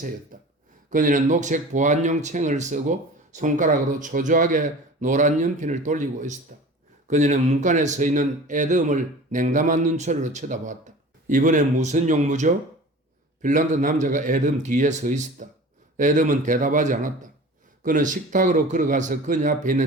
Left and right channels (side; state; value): both; normal; correlation 0.39